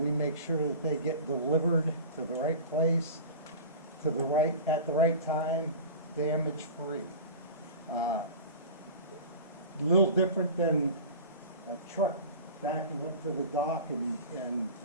make sure that they get delivered to the right place, at the right time, damage-free. A little different than a truck backing up to the dock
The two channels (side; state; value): both; inverted; correlation -0.35